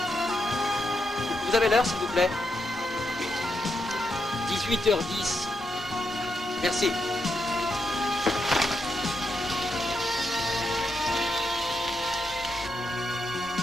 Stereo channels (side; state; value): both; normal; correlation 0.82